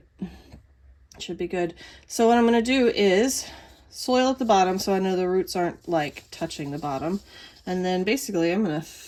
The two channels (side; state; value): both; identical; correlation 1.00